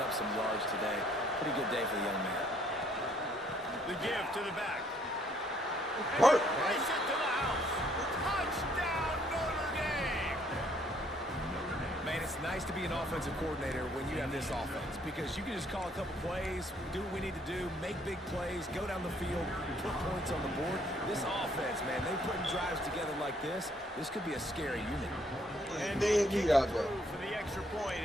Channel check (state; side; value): normal; both; correlation 0.66